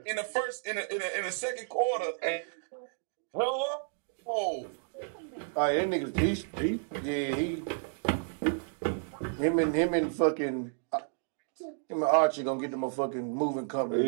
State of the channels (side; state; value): left; silent; 57 dB below the other